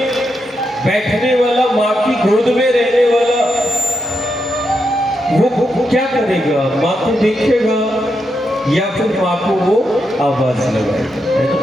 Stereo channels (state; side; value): normal; both; correlation 0.83